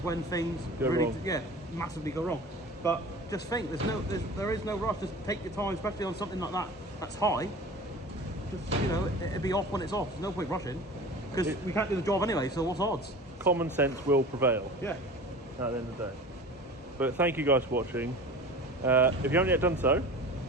when things Go really, wrong. massively go wrong. But just think. There is no rush. Just take your time, especially on something like that. That's high. Just, it'll be off when it's off. There's no point rushing because we can't do the job anyway. So what's odds? Common sense will prevail. Yeah. At the end of the day. But thank you guys for watching. If you haven't yet done so,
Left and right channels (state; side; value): normal; both; correlation 0.38